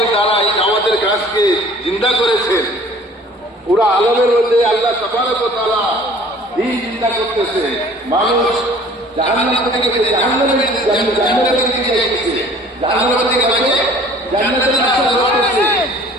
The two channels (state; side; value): normal; both; correlation 0.50